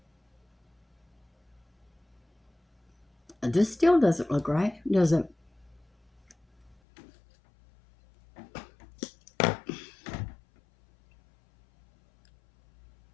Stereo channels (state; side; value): drops out; right; at 6.8 s